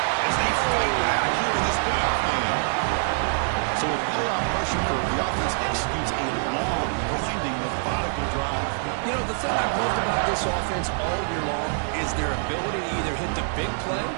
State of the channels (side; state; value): left; silent; 62 dB below the other